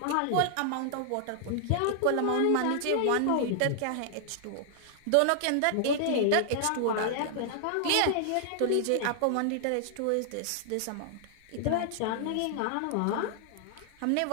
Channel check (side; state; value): both; different; correlation -0.01